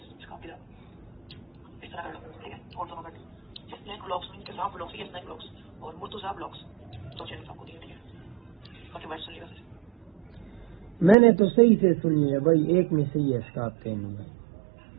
काफी इस तरह कर लो, ठीक है। और दोनों बैठ स्नैक ब्लॉग्स में किसान ब्लॉग्स या स्नैक ब्लॉग्स और मुर्तुजा ब्लॉग्स, तो चैनल आपको दिया, ठीक है। बाकी बात सुनिएगा। मैंने तो सही से सुनी है भाई, एक में सही है स्कार्फ पहनूंगा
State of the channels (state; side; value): drops out; left; at 11.2 s